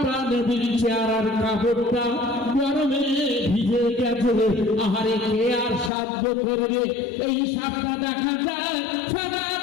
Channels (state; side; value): drops out; right; at 5.9 s